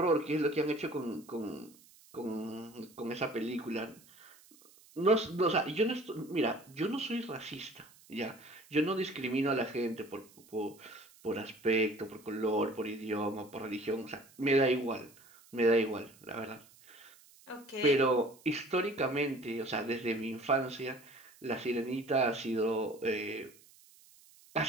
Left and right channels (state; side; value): noise; right; hiss, 25 dB below the sound